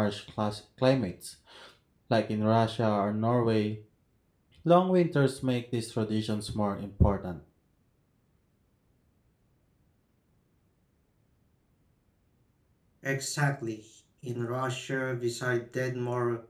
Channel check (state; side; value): identical; both; correlation 1.00